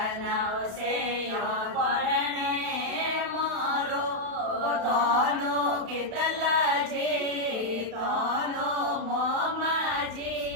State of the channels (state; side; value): late; left; 32 ms